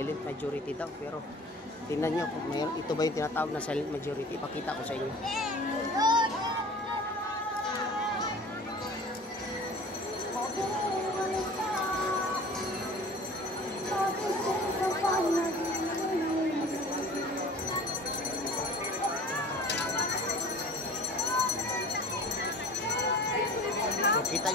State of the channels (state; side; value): normal; both; correlation 0.43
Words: majority daw, pero tingnan nyo kung ito ba yung tinatawag na silent majority. Pakita ko sa inyo. Kita